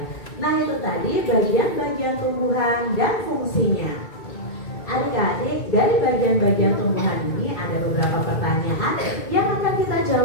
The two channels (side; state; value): right; late; 2.3 ms